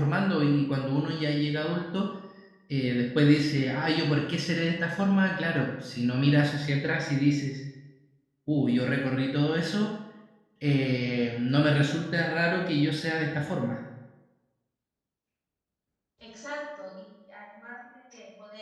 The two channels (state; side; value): identical; both; correlation 1.00